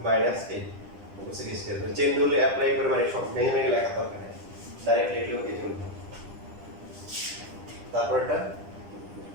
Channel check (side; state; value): left; late; 10 ms